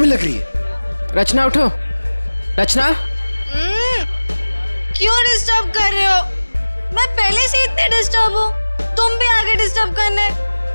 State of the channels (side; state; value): both; inverted; correlation -1.00